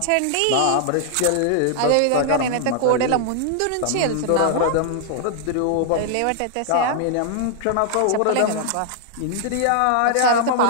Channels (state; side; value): different; both; correlation -0.01